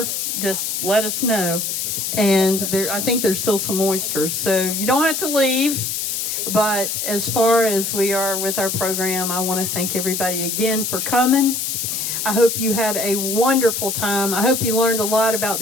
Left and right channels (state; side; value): noise; left; hiss, 2 dB below the sound